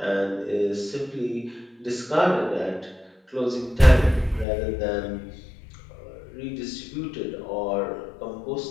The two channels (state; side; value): drops out; right; at 4.5 s